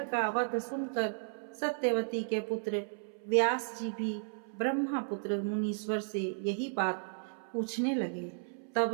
का वध सुनकर सत्यवती के पुत्र व्यास जी भी ब्रह्मपुत्र मुनीश्वर से यही बात पूछने लगे। तब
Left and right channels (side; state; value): left; silent; 55 dB below the other